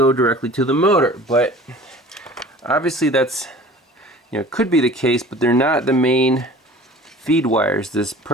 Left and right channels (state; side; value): normal; both; correlation 0.44